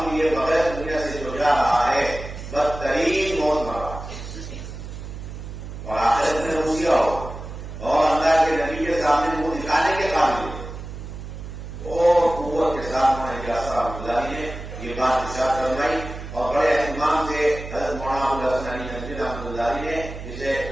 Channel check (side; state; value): right; noise; hum, 10 dB below the sound